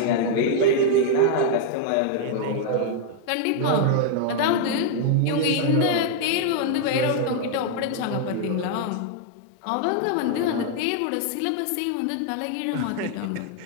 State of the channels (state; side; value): different; both; correlation 0.00